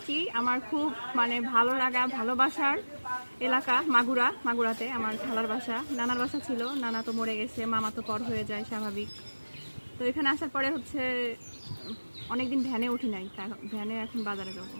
আমার খুব ভালো লাগা ভালোবাসার এলাকা মাগুরাতে আমার খালার বাসা, নানার বাসা ছিল। নানা তো মরে গেছে, মামা তো পর হয়ে যায় স্বাভাবিক। তো এখানে আসার পরে অনেকদিন ভ্যানে উঠি নাই, ভ্যানে এখন বাজারে যাবো।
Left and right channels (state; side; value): inverted; both; correlation -1.00